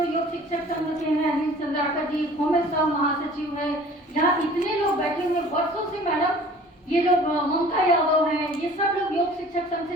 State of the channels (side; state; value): both; normal; correlation 0.48